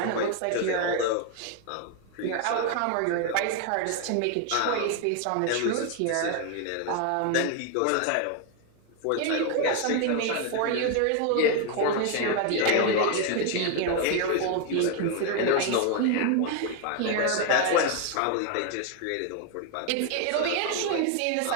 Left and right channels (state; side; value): different; both; correlation 0.01